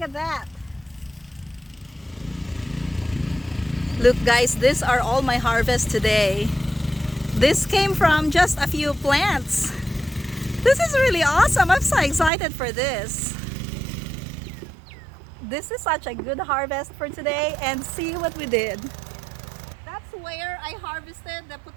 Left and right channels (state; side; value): drops out; left; at 12.3 s